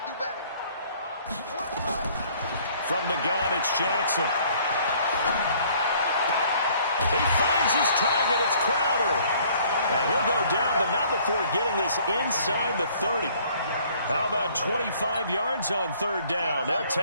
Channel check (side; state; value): both; inverted; correlation -0.58